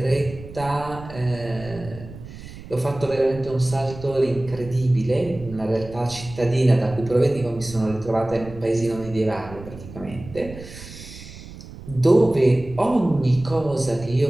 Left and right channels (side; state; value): right; noise; rumble, 15 dB below the sound